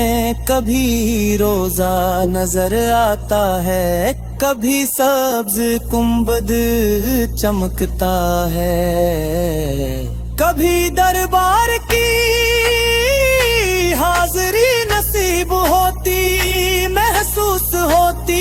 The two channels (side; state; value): both; identical; correlation 1.00